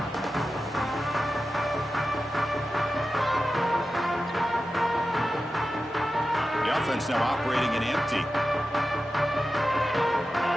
The offense now operating in empty.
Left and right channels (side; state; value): both; normal; correlation 0.92